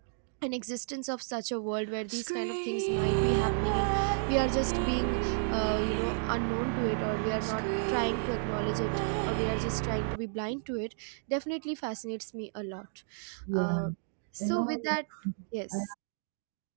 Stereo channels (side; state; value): left; silent; digital silence